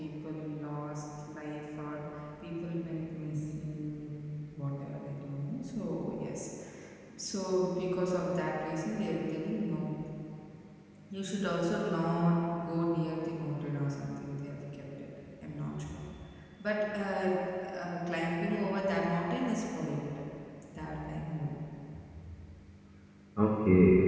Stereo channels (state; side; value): identical; both; correlation 1.00